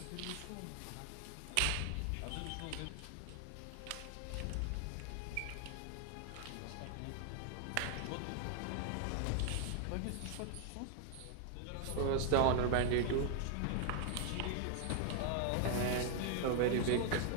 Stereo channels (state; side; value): different; both; correlation 0.00